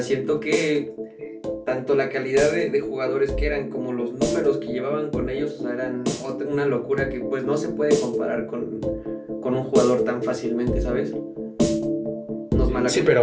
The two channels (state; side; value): identical; both; correlation 1.00